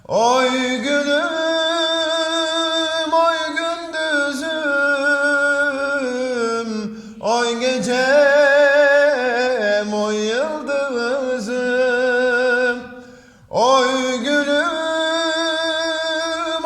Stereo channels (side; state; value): both; identical; correlation 1.00